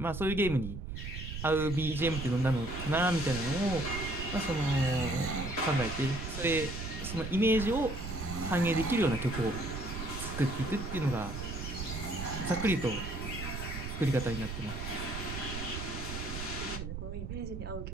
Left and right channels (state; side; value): noise; right; rumble, 6 dB below the sound